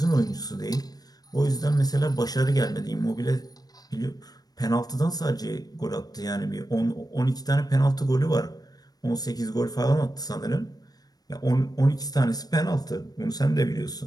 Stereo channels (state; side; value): late; right; 0.19 ms